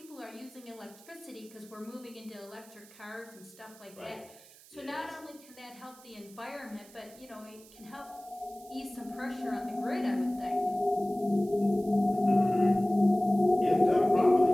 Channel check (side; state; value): right; noise; hiss, 23 dB below the sound